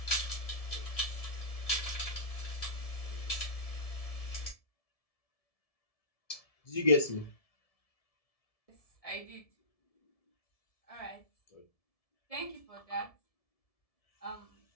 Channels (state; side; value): late; right; 1.7 ms